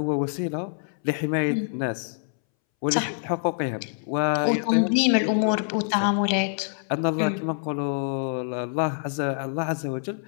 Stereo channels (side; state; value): right; silent; 61 dB below the other